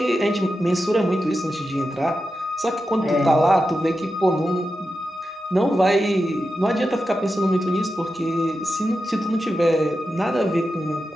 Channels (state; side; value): normal; both; correlation 0.90